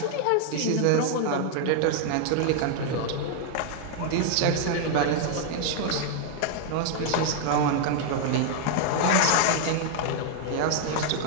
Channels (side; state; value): both; different; correlation 0.00